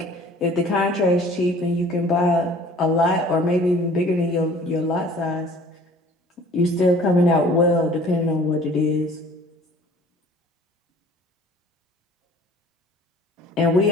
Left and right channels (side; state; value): both; normal; correlation 0.50